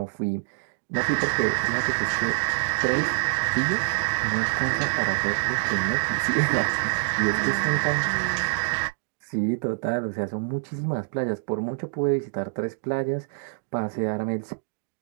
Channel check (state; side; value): silent; left; digital silence